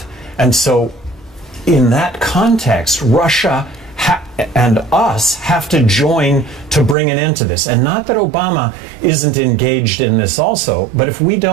And so in that context, Russia and us have to join to bring an end to this. And not that Obama isn't engaged in this also, but if we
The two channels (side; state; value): left; drops out; at 7.0 s